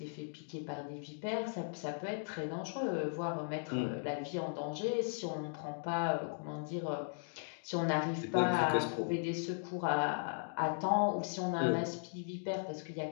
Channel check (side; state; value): right; silent; digital silence